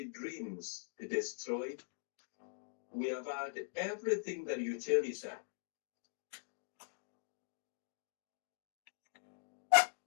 dreams destroyed. We have had everything that you cherish.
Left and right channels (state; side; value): silent; right; digital silence